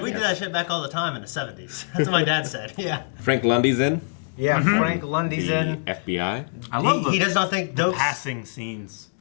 we did that shit back all the time in the 70s. That's what my dad said. Yeah. Frank Lundy's in. Yeah, Frank Lundy's The in. FBI. I love He does not think Dokes. passing scenes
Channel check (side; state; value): right; silent; digital silence